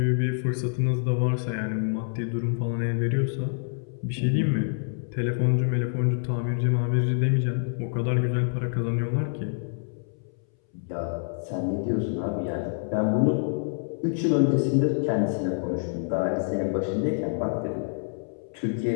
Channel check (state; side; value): silent; right; 60 dB below the other